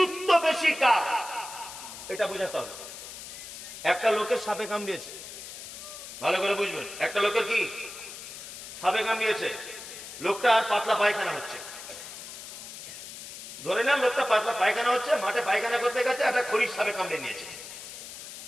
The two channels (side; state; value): left; noise; hiss, 12 dB below the sound